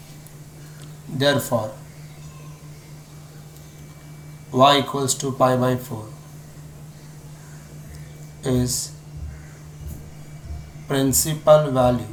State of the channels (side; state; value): both; identical; correlation 1.00